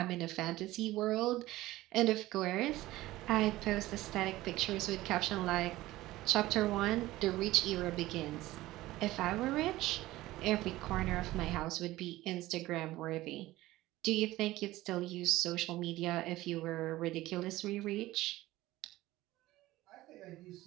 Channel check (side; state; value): left; quieter; 17.1 dB